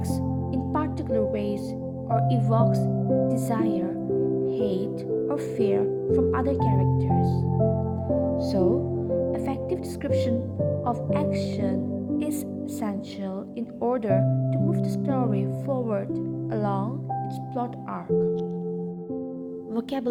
in particular ways or evokes desire, hate, or fear from other characters. So, effective description of action is essential in order to move the story forward along its plot arc.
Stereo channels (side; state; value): both; identical; correlation 1.00